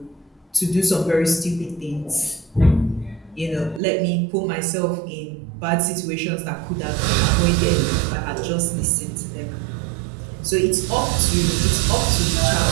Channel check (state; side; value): drops out; left; at 3.8 s